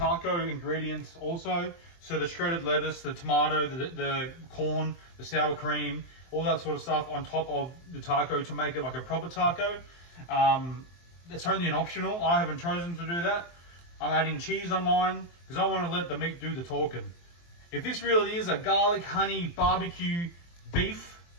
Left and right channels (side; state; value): right; late; 23 ms